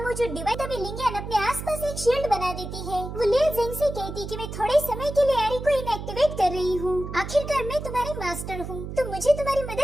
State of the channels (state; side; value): noise; right; hum, 8 dB below the sound